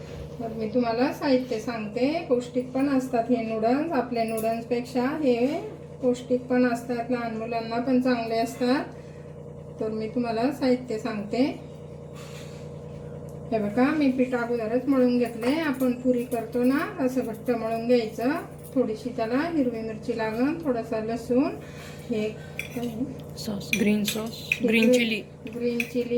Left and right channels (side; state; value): both; identical; correlation 1.00